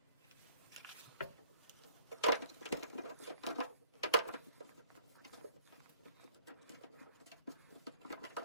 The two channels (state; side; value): inverted; both; correlation -0.57